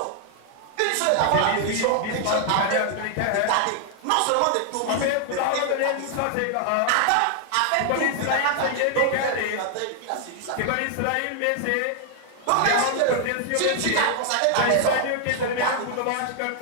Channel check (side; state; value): both; different; correlation 0.00